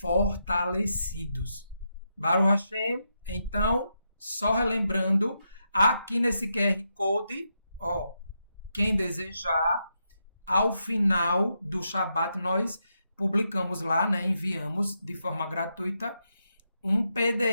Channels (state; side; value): inverted; both; correlation -0.83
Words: Baruch Hashem, então, só relembrando, aqui nesse QR Code, quem desejar, ao final do Shabat, nós publicamos lá, né, enviamos de forma gratuita um